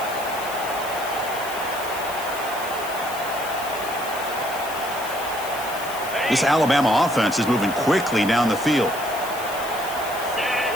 This Alabama offense is moving quickly down the field.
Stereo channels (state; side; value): noise; left; hiss, 12 dB below the sound